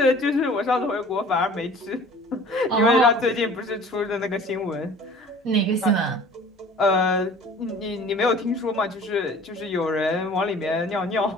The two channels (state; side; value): normal; both; correlation 0.47